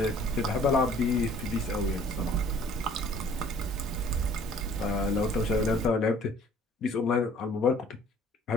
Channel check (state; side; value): normal; both; correlation 0.54